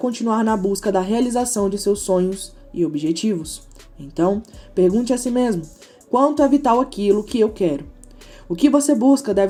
na busca da realização de seus sonhos e objetivos. Então, pergunte a si mesmo, quanto é vital aquilo que eu quero? O que você busca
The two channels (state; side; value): identical; both; correlation 1.00